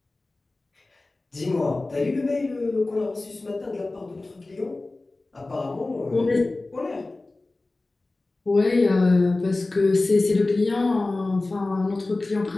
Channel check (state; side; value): quieter; right; 3.1 dB